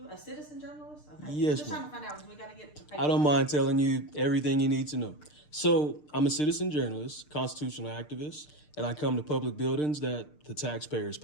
A citizen journalist? Okay. Yes, Just ma'am. trying to find out because we got to get the paper. I don't mind telling you everything you need to know. So, I'm a citizen journalist, constitutional activist, and I come to public buildings that the taxpayers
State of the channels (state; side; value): late; right; 6.6 ms